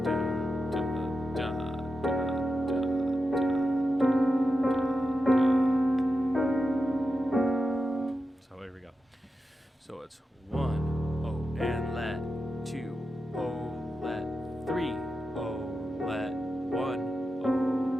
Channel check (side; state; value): both; normal; correlation 0.90